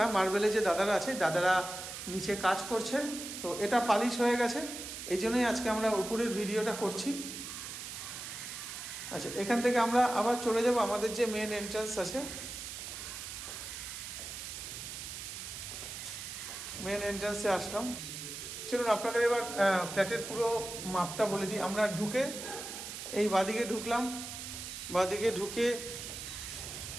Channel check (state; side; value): noise; right; hiss, 8 dB below the sound